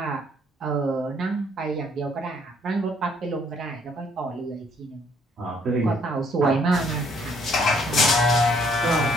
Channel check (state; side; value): normal; both; correlation 0.65